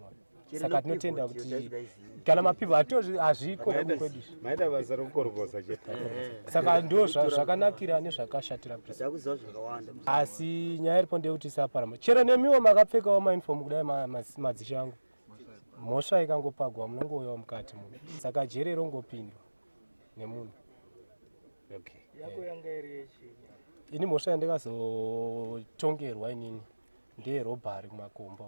Saka tinotenda kuti kana mapipa hazviko kwedu. Maida basa rokukorokoza chete. Saka ndo zvakanakira nezvakashatira Ndakuziva zvakawanda. asi nyaya iripo ndeyekuti isaparama. Chero nemiwo makapfekawo mauniform kudai madzishe angu. Mhosva ikangopagwa munongouyawo mukati muno. Saka jeri rongopindwa nemunhu. Okay. Yako yanga iri yechi. Ini mhosva yandikazotongerwa inini ndeyerobhari kumakomba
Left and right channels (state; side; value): inverted; both; correlation -1.00